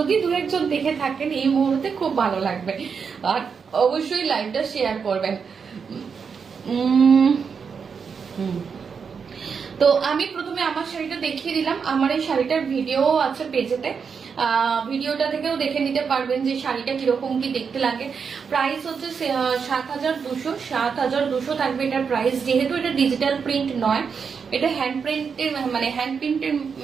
দু একজন দেখে থাকেন এই মুহূর্তে খুব ভালো লাগবে, আর অবশ্যই লাইভটা শেয়ার করবেন। তো আমি প্রথমে আমার শাড়িটা দেখিয়ে দিলাম। আমার এই শাড়িটার ভিডিও আছে পেজেতে, ভিডিওটা থেকেও দেখে নিতে পারবেন যে শাড়িটা কিরকম কি দেখতে লাগে। প্রাইস হচ্ছে ৭,২০০, ৭,২০০ থাকবে এটার প্রাইস। যেহেতু এটা ডিজিটাল প্রিন্ট নয়, এটা হ্যান্ড প্রিন্টের মানে হ্যান্ড প্রিন্টের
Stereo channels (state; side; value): quieter; left; 6.1 dB